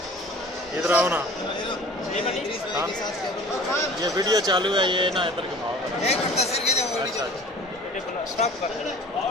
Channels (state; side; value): normal; both; correlation 0.44